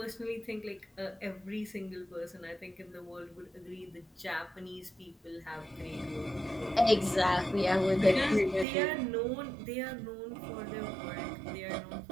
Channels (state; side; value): drops out; left; at 8.7 s